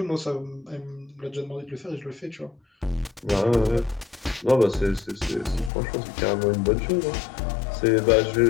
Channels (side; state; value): right; drops out; at 5.7 s